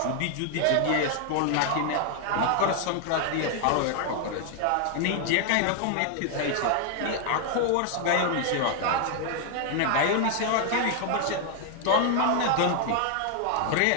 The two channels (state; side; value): different; both; correlation 0.00